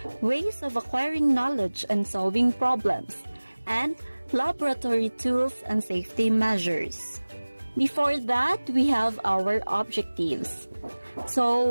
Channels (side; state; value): both; inverted; correlation -1.00